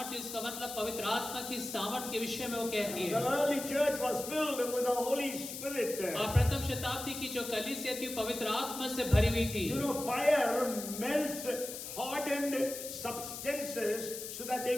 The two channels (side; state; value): left; noise; hiss, 8 dB below the sound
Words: इसका मतलब पवित्र आत्मा की सामर्थ्य के विषय में वो कहती The है। early church was filled with the Holy Spirit. और प्रथम शताब्दी की जो कलीसिया थी पवित्र आत्मा से भरी हुई थी। You know, fire melts hardened substances so that they